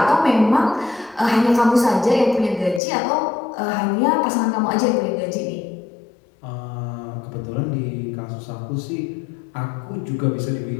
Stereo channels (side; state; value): right; drops out; at 2.8 s